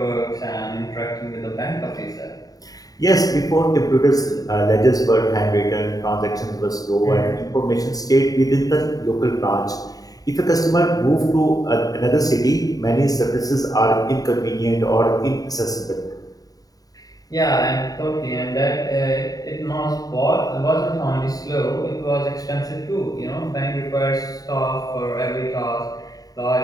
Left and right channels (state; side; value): late; right; 0.18 ms